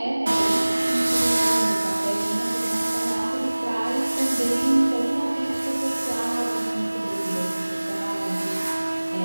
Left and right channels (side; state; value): both; inverted; correlation -1.00